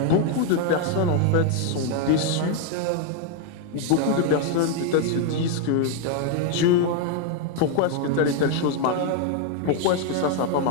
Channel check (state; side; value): different; both; correlation 0.01